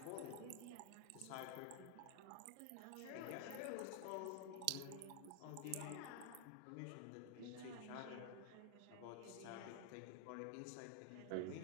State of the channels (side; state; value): both; different; correlation 0.00